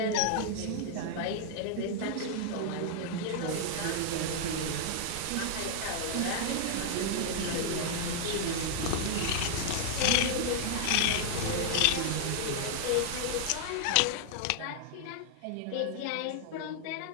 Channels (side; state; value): both; different; correlation -0.01